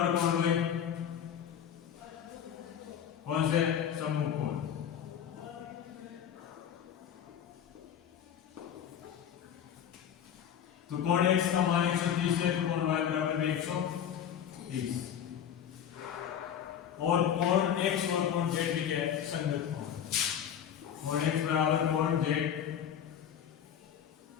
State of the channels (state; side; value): quieter; right; 9.1 dB